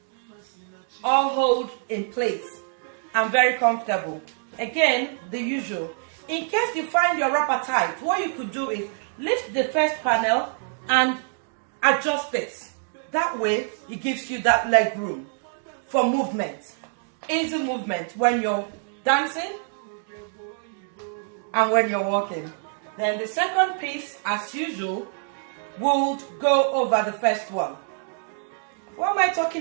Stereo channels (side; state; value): left; silent; 61 dB below the other